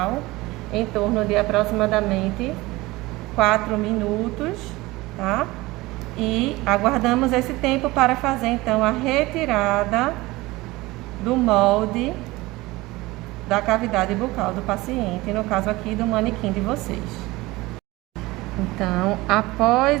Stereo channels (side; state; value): left; quieter; 20.5 dB